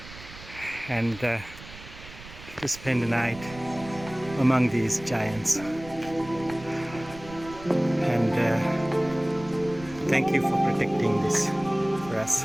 and to spend the night among these giants. And thank you for protecting this for us.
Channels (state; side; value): noise; right; rumble, 17 dB below the sound